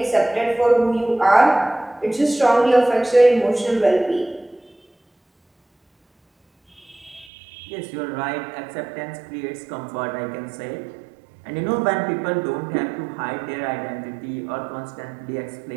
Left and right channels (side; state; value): left; drops out; at 7.2 s